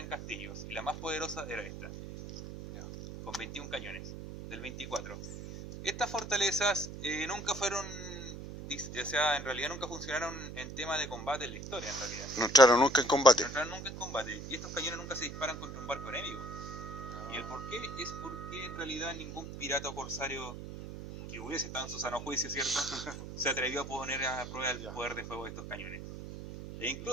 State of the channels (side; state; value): right; noise; hum, 9 dB below the sound